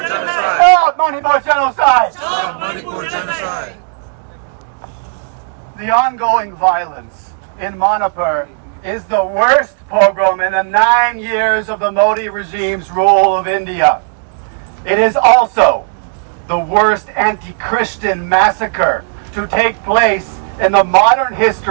genocide! Stop Manipur genocide! Stop Manipur genocide! The ongoing violence in Manipur is the worst pogrom in the 9 years of the Modi regime's rule of India. It is also the worst anti-Christian massacre to take place in the modern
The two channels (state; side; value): silent; left; digital silence